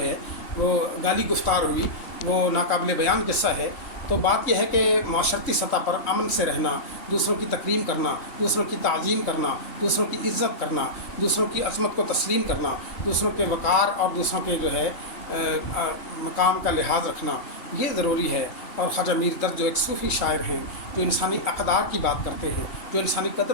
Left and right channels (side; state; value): right; late; 3.1 ms